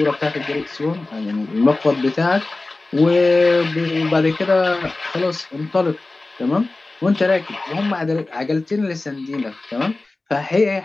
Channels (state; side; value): quieter; right; 3.2 dB